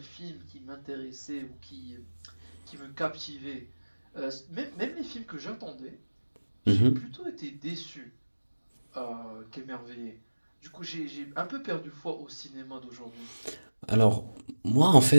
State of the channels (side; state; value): both; inverted; correlation -1.00